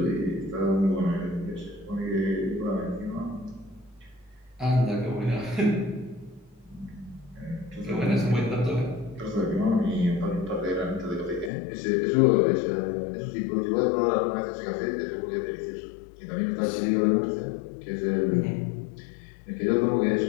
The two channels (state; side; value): drops out; right; at 11.5 s